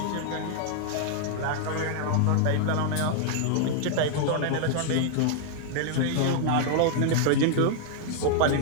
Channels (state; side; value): different; both; correlation -0.01